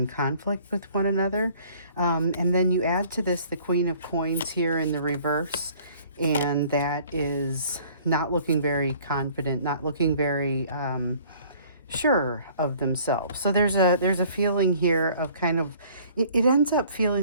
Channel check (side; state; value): both; inverted; correlation -0.54